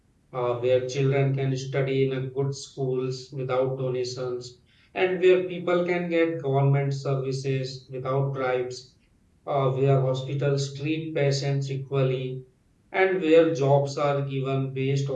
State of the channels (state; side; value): identical; both; correlation 1.00